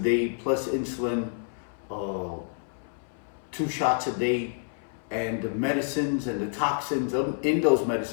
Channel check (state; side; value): silent; right; 59 dB below the other